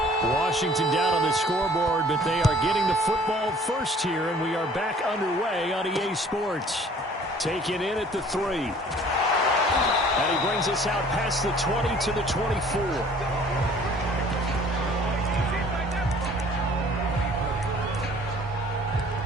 Washington down on the scoreboard, but they are getting the football first here, and we are back underway on EA Sports. Taken in at the 3. And he brings us out past the 20 to the 24.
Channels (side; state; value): both; normal; correlation 0.53